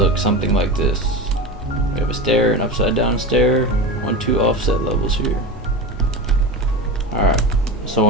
something like this. We have a stair, an upside down stair, 1, 2 offset levels here. Alright, so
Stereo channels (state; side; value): normal; both; correlation 0.25